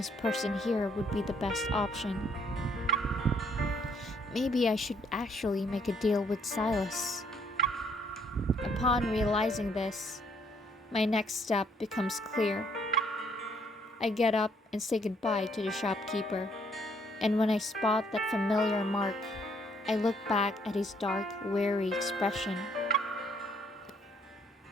person here would be the best option. Maybe I should actually make a deal with Silas. Upon realizing this, my next step becomes clear. I get up and say goodbye to the shopkeeper, and when I spot that familiar mark, I look back at his dark, weary expression.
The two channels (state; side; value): normal; both; correlation 0.67